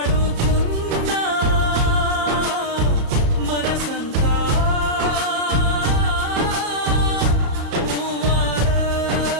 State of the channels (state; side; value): late; left; 34 ms